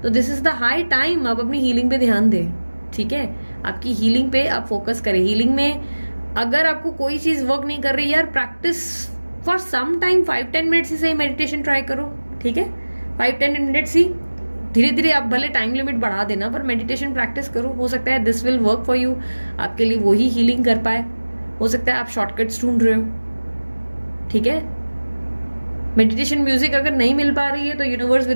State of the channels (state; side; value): inverted; both; correlation -1.00